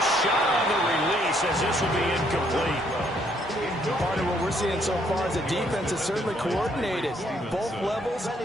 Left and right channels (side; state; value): both; normal; correlation 0.69